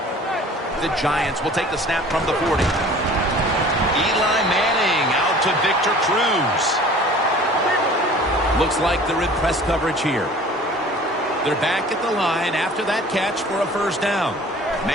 The Giants will take the snap from the 40. Eli Manning out to Victor Cruz. Looks like they're in press coverage here. They're back at the line after that catch for a first down.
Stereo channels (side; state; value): both; normal; correlation 0.47